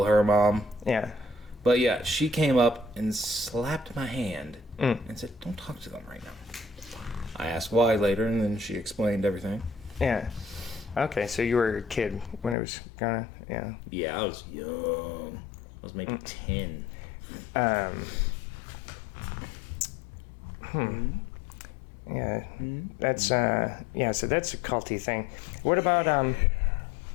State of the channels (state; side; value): drops out; right; at 12.6 s